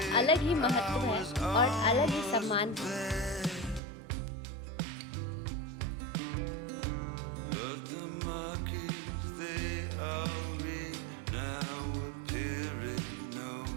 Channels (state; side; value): drops out; left; at 3.8 s